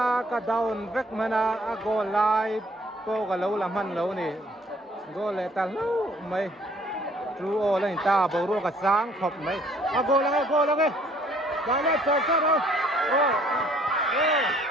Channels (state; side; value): normal; both; correlation 0.60